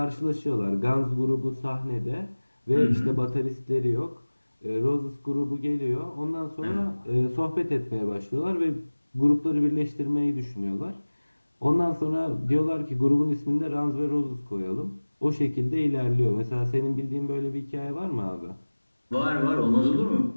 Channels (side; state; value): both; inverted; correlation -1.00